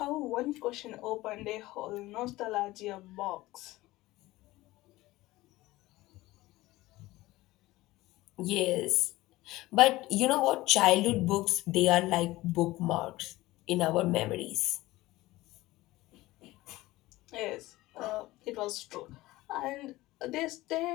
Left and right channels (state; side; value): quieter; right; 18.3 dB